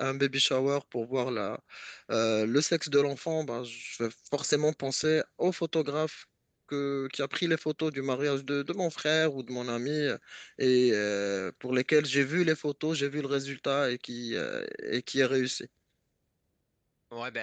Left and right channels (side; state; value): both; identical; correlation 1.00